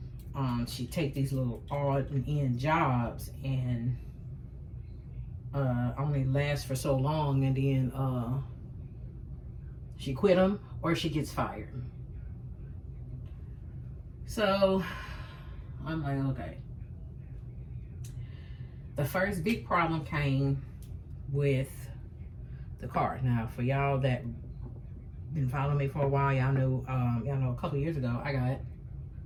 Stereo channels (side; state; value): both; identical; correlation 1.00